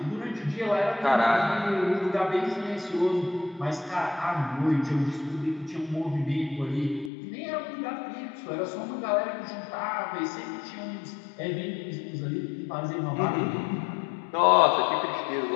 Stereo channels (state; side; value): drops out; right; at 7.1 s